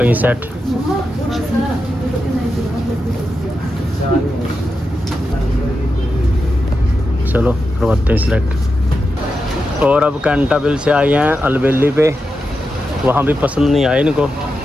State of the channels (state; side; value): normal; both; correlation 0.89